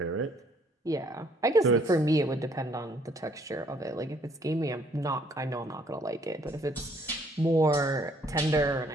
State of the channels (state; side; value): normal; both; correlation 0.64